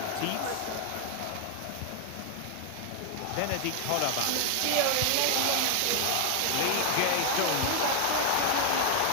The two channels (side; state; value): both; different; correlation 0.00